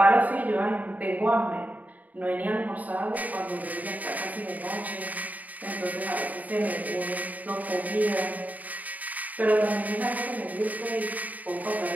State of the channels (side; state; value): left; late; 0.076 ms